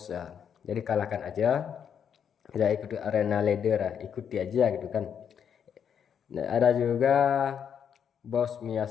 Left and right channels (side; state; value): right; quieter; 8.0 dB